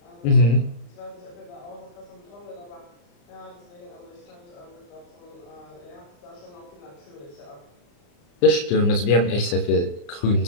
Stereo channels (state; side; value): late; right; 35 ms